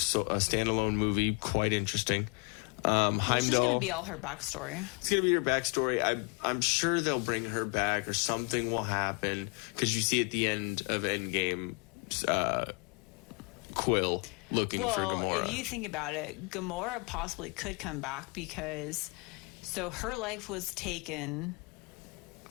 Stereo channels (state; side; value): quieter; right; 31.4 dB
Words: movie quite interesting. It's just going to be all her backstory. It's going to be her backstory. I'm sure they'll bring her back or something will happen, because you see at the end of Endgame, Quill looking for Gamora. If you think about it, Gamora possibly could come back because her life was taken